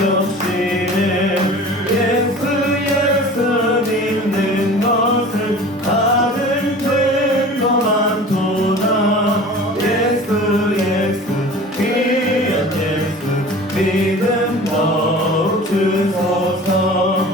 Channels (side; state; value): both; normal; correlation 0.40